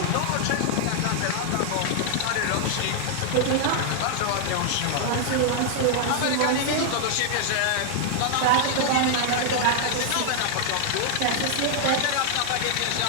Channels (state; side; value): different; both; correlation 0.00